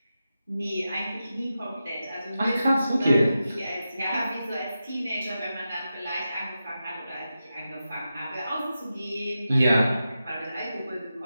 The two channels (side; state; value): both; inverted; correlation -0.90